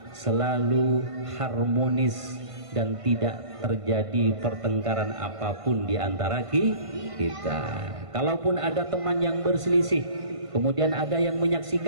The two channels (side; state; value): left; late; 1.5 ms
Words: selalu harmonis, dan tidak terjadi pertengkaran apapun di antara kita. Kalaupun ada teman yang berselisih, kemudian ada yang